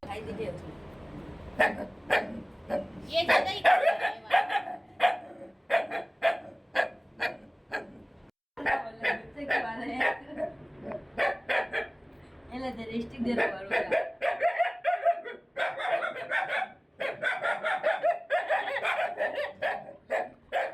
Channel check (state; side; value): identical; both; correlation 1.00